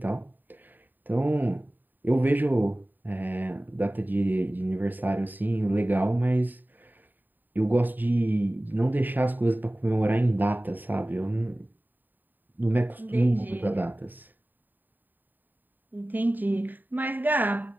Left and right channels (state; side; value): late; left; 0.089 ms